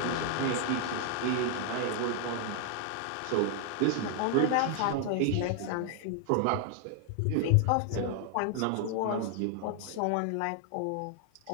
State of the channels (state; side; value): different; both; correlation 0.00